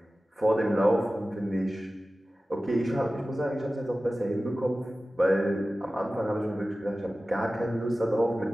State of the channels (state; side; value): normal; both; correlation 0.96